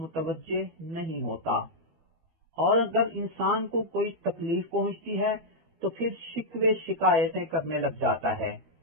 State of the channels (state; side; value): late; left; 12 ms